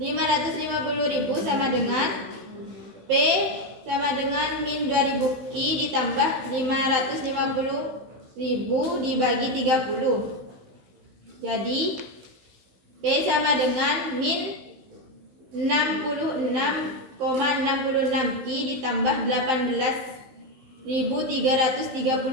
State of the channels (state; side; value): late; left; 15 ms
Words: sama dengan P sama dengan min 2000 Q ditambah 550.000 dibagi 30. Jadi P sama dengan min 66,66 Q ditambah 18.333.